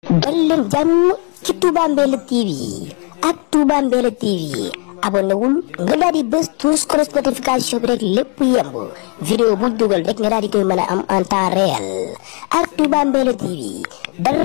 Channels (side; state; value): right; quieter; 37.1 dB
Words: dal leen jàmm ci Touba Mbella TV ak Touba Mbella TV abonné wul nga daal di bës tous notification bi rek lépp yemb vidéo bu dugal rek nga daal di koy mën a am en temps réel ak Touba Mbella TV